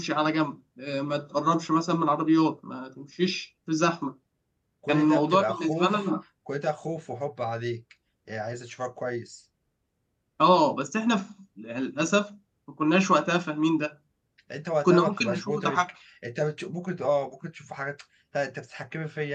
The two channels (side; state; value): both; identical; correlation 1.00